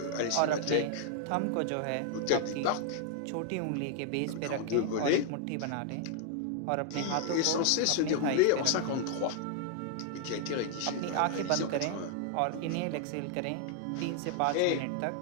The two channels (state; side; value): different; both; correlation 0.00